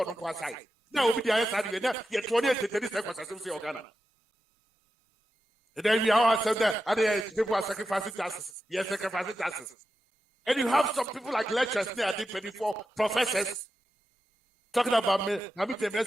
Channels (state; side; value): normal; both; correlation 0.90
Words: Now, we are saying that you're 28 seconds of Ghana. And then we are saying that other people are sacrificing taxes. Yes, sacrificing taxes. And you have some people like lecturers there, 24 professors talking about me. I mean, the